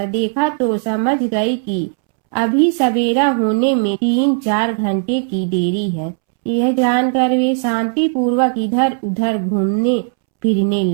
देखा तो समझ गई कि अभी सवेरा होने में 3-4 घंटे की देरी है। यह जानकर वे शांति पूर्वक इधर उधर घूमने फिरने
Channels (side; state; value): left; silent; 68 dB below the other